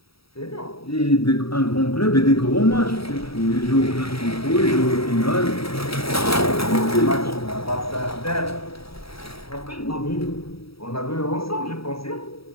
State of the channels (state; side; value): late; right; 0.76 ms